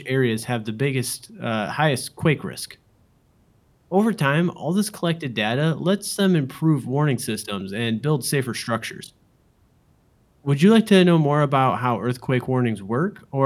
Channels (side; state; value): both; identical; correlation 1.00